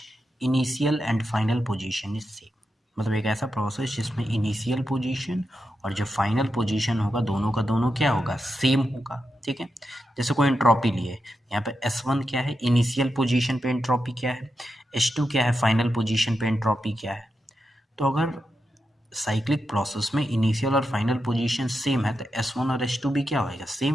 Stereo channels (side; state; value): both; normal; correlation 0.87